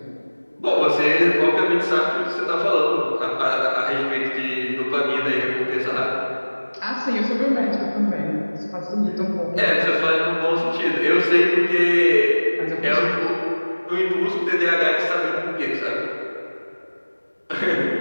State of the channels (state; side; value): inverted; both; correlation -1.00